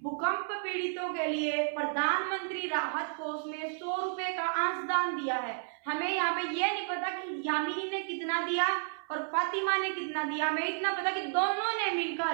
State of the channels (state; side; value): silent; left; 56 dB below the other